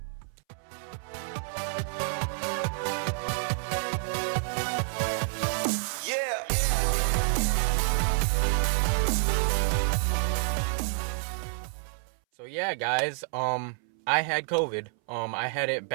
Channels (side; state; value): left; silent; 59 dB below the other